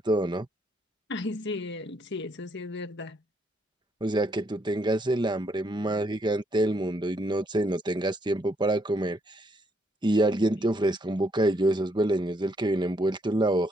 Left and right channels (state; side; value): normal; both; correlation 0.72